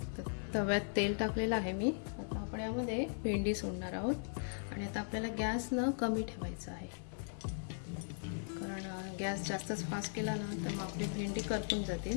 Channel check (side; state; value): right; silent; 52 dB below the other